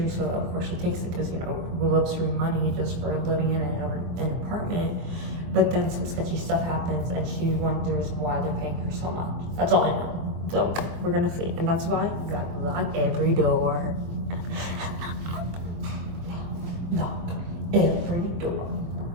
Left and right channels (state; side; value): late; left; 23 ms